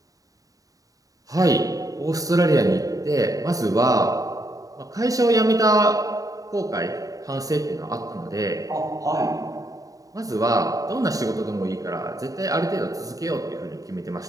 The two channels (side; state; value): left; late; 0.17 ms